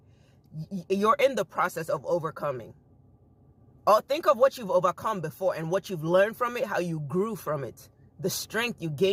you're in the process of overcoming. Or think of what you've overcome before and what you've learned from it, how you grew from it, the strength you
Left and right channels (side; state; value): both; identical; correlation 1.00